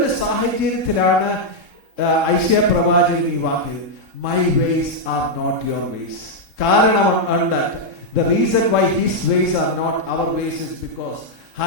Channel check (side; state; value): left; late; 3.7 ms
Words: സാഹചര്യത്തിലാണ് ഐശയ്യാ പ്രവാചകൻ ഈ വാക്ക്, my ways are not your ways. കാരണം ഉണ്ട്. The reason why his ways are not our ways is because,